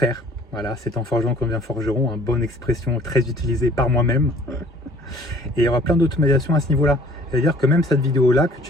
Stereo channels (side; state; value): both; normal; correlation 0.54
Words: Voilà, c'est en forgeant qu'on devient forgeron, une bonne expression très utilisée par moi-même. Et il y aura plein d'automatisation à ce niveau-là. C'est-à-dire que même cette vidéo-là que